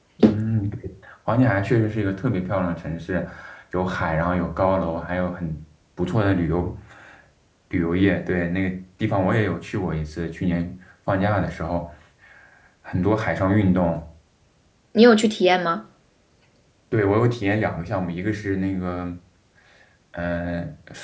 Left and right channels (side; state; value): both; identical; correlation 1.00